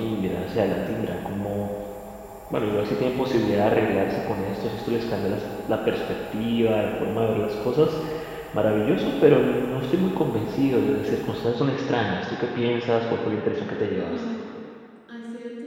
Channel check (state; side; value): identical; both; correlation 1.00